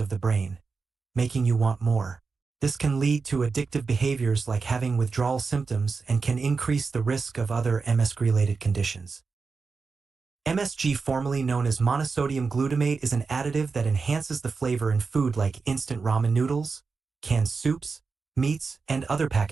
the brain, making you want more. This can lead to addictive behaviors like having withdrawal symptoms and can increase the risk of other MSG-related conditions. MSG, formerly known as monosodium glutamate, is an additive that enhances the flavor in food like instant ramen noodles, canned soups, meats, and other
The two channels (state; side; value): quieter; left; 4.7 dB